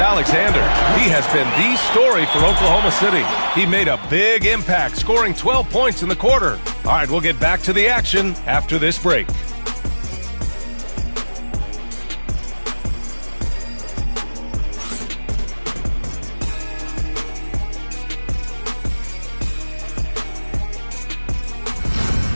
He has been the story for Oklahoma City. He made a big impact, scoring 12 points in the quarter. All right, we'll get back to the action after this break.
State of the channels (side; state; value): both; inverted; correlation -1.00